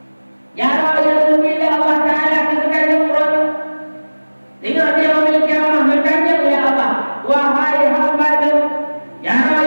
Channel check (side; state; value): both; inverted; correlation -1.00